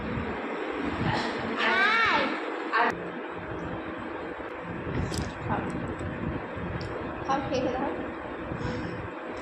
হাই আর খাও খেয়ে দাও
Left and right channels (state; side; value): identical; both; correlation 1.00